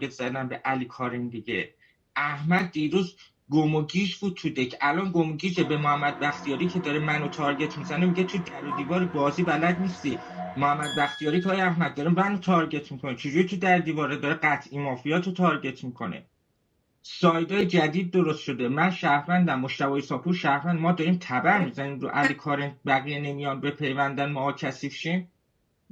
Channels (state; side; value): identical; both; correlation 1.00